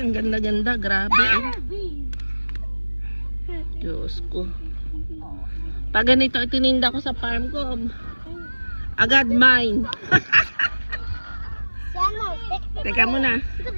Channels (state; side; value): inverted; both; correlation -1.00